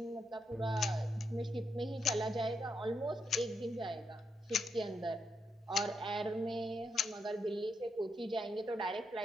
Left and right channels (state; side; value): normal; both; correlation 0.81